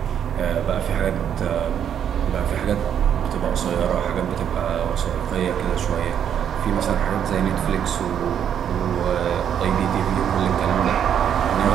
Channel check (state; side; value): quieter; left; 8.9 dB